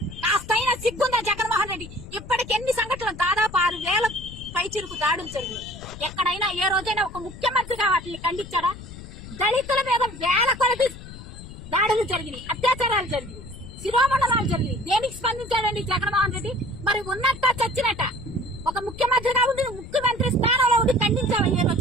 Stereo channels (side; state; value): left; noise; rumble, 14 dB below the sound